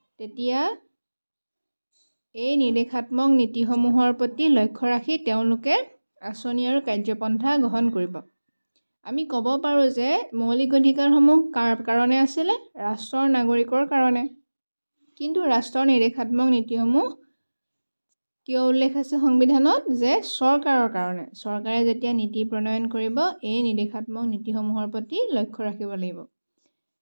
তেতিয়া এই নিৰ্দেশাত্মক নীতিসমূহৰ প্ৰতি লক্ষ্য ৰাখি তেওঁলোকে আঁচনি আৰু কাৰ্যপন্থা গ্ৰহণ কৰিব। আমি ক'ব পাৰোঁ যে মৌলিক অধিকাৰসমূহ কাৰ কাৰণে আছিলে? ৰাষ্ট্ৰৰ নাগৰিকৰ কাৰণে। কিন্তু ৰাষ্ট্ৰৰ নিৰ্দেশাত্মক নীতিসমূহ কিয় উল্লেখ আছে সংবিধানত? যে চৰকাৰৰ কাৰণে। চৰকাৰে যেতিয়া নীতি প্ৰণয়ন কৰিব, এই নিৰ্দেশাত্মক নীতিসমূহৰ প্ৰতি লক্ষ্য ৰাখিব লাগিব।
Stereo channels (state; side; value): inverted; both; correlation -1.00